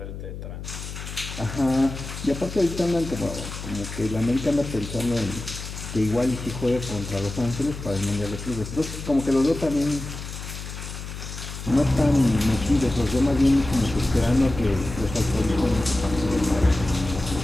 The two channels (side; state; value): left; noise; hum, 9 dB below the sound